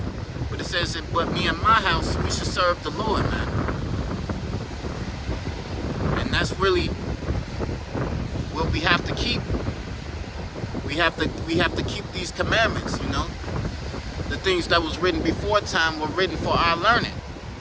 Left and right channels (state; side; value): identical; both; correlation 1.00